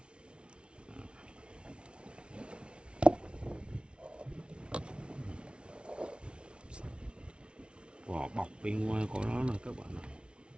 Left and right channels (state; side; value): late; left; 0.058 ms